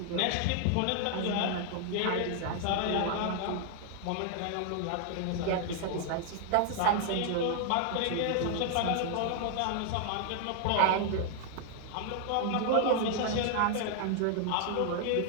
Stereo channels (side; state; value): both; different; correlation 0.00